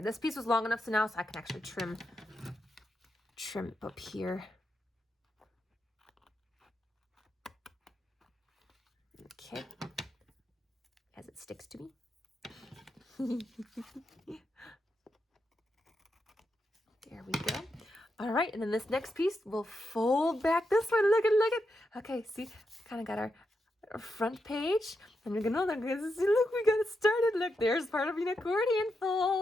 piece was long enough so now I can actually trim it up here. Okay, as it sticks to me. There we go. All right, and then this next piece will fold back this way. Look at. Okay, see, kind of got our front page, and we're gonna see. Look, we got it started. Look, there's part of an accordion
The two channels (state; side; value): normal; both; correlation 0.85